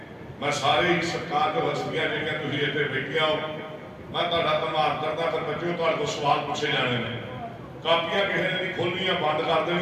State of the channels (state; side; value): identical; both; correlation 1.00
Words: मैं सारे ही सरकार के हस्तियां जिहड़ियां तुसीं इत्थे बैठियां हो, मैं तुहाडा धन्नवाद करदा। फिर बच्चों तुहाडे कोल सवाल पूछे जाने ने, कापियां किसी ने नहीं खोलनियां, बंद कर